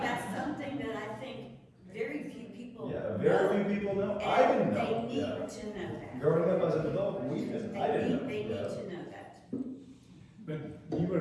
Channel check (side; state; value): both; identical; correlation 1.00